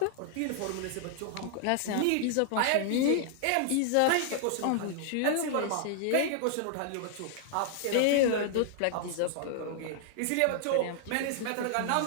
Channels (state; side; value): different; both; correlation -0.01